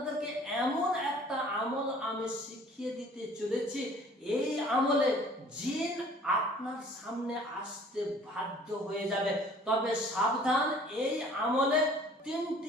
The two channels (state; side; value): normal; both; correlation 0.52